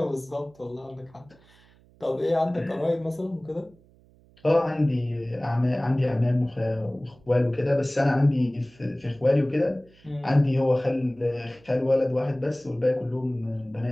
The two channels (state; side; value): noise; right; hum, 29 dB below the sound